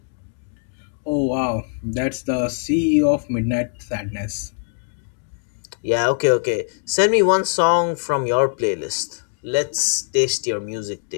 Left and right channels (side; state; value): right; silent; 64 dB below the other